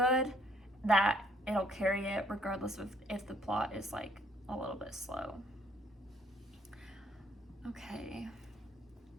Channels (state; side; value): normal; both; correlation 0.65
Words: that it'll carry it regardless of if the plot is like a little bit slow. Okay.